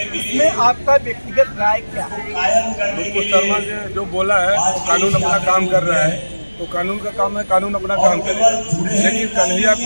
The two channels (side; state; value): both; inverted; correlation -1.00